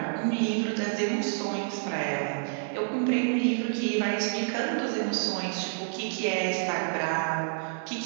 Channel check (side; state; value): left; silent; digital silence